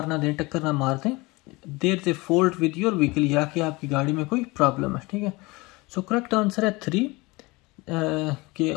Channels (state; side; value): quieter; right; 23.8 dB